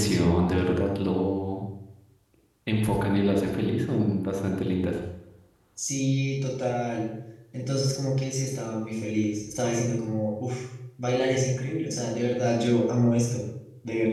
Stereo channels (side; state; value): both; identical; correlation 1.00